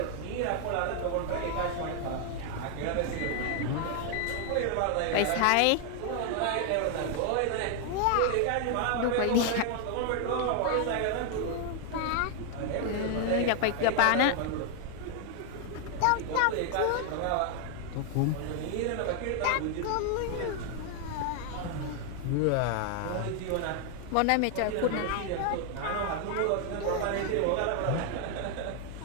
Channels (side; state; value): both; different; correlation 0.00